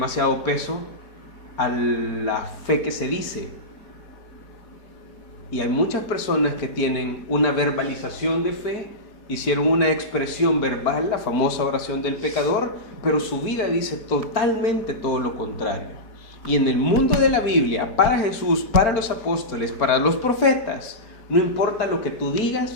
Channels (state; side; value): late; right; 4.5 ms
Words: peso a la fe que se dice. Y hay muchas personas que tienen una verbalización de fe, hicieron una expresión verbal, la famosa oración del pecador, pero su vida dice totalmente todo lo contrario. Y en el mundo de la Biblia, para Jesús, para los apóstoles, para los profetas, no importa lo que tú digas,